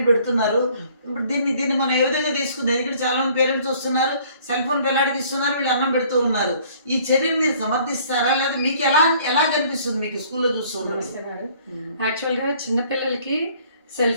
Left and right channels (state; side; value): inverted; both; correlation -0.57